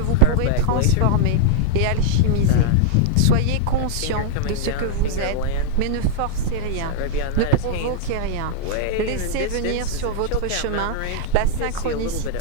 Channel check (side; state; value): both; different; correlation -0.01